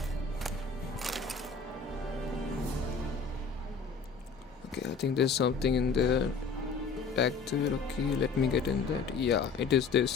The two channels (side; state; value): right; quieter; 5.0 dB